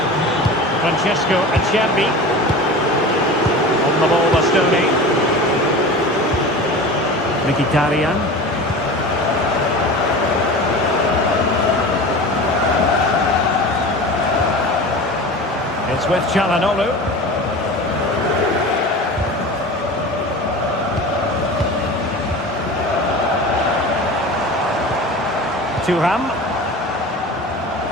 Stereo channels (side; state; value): both; normal; correlation 0.34